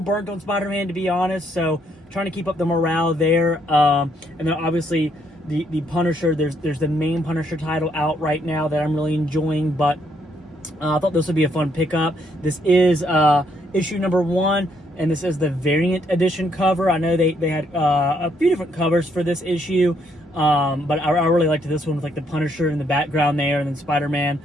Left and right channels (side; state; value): both; normal; correlation 0.72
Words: on Spider-Man, to be honest, so trying to keep up the morale there. And then obviously the Punisher, there's the main Punisher title out right now that I'm really enjoying, but I thought this would be a fun pickup. This is issue number 1, and this is the variant edition cover. I know they had a few different covers for this issue, but I really liked this one with like the Punisher in the background there, and then Spider-Man